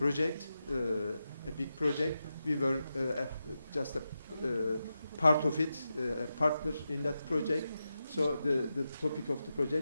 a big project. We were just a part of it, a partner in that project. So the topic of the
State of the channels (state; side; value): inverted; both; correlation -0.89